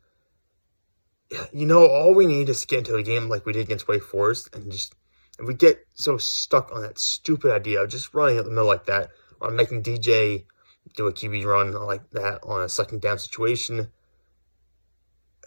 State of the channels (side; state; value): both; inverted; correlation -1.00